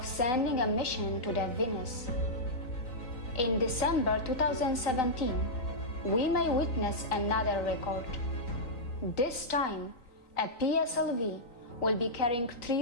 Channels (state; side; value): late; right; 3.9 ms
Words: sending a mission to the Venus. In December 2017, we may witness another record. This time, a PSLV will be carrying